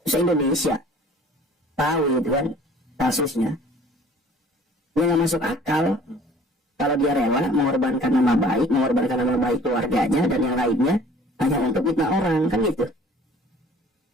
se-Indonesia tahu gitu kan kasusnya. Dia nggak masuk akal kalau dia rela mengorbankan nama baik keluarganya dan yang lainnya hanya untuk fitnah orang, kan gitu.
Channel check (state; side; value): normal; both; correlation 0.51